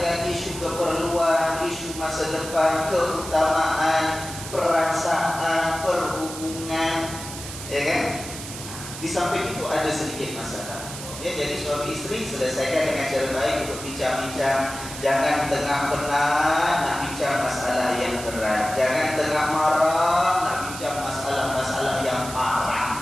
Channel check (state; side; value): noise; right; hiss, 10 dB below the sound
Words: isu keperluan, isu masa depan, keutamaan, perasaan, perhubungan, ya kan? Di samping itu ada sedikit masalah. Ya, jadi suami istri selesaikan dengan cara baik untuk bincang-bincang. Jangan tengah penat nak bincang masalah yang berat. Jangan tengah marah nak bincang masalah-masalah yang